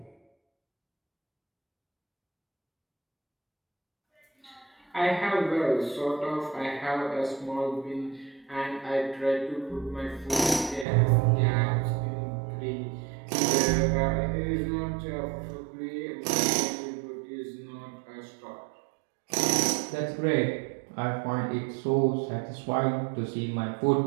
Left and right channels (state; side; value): drops out; left; at 10.9 s